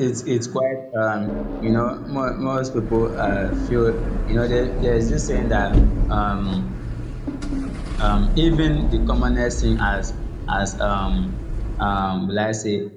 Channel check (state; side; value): identical; both; correlation 1.00